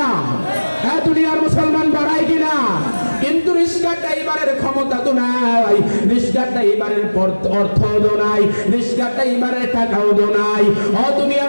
হ্যাঁ দুনিয়ার মুসলমান পড়ায় কিনা? কিন্তু রিক্সা ড্রাইভারের ক্ষমতা তো নাই, রিক্সা ড্রাইভারের অর্থ তো নাই, রিক্সা ড্রাইভারের টাকাও তো নাই। ও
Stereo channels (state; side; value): inverted; both; correlation -1.00